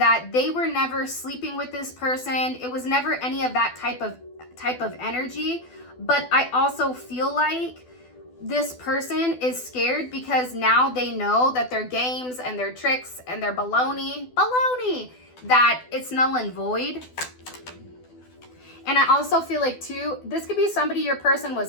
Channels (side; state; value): right; late; 12 ms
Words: they were never sleeping with this person. It was never any of that type of energy. But I also feel like this person is scared because now they know that their games and their tricks and their baloney, that it's null and void. And I also feel like too, this could be somebody your person